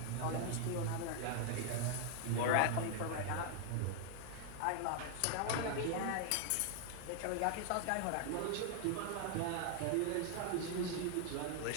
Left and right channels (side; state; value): both; different; correlation 0.00